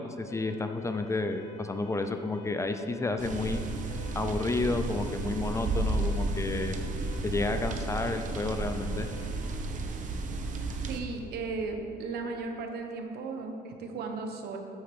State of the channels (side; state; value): both; normal; correlation 0.66